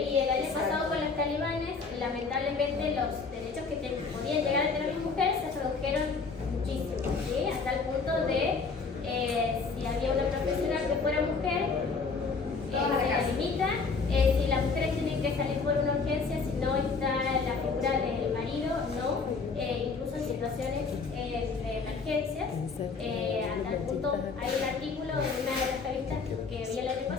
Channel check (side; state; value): right; quieter; 4.6 dB